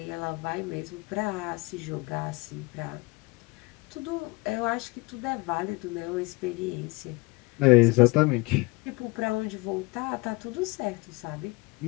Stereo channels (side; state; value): right; quieter; 24.7 dB